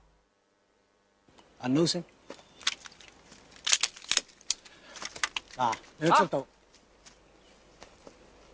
銀撈聲。嗱，你嘅速度，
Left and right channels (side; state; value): both; identical; correlation 1.00